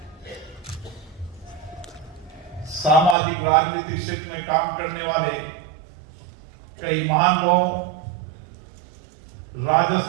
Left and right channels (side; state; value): left; drops out; at 3.2 s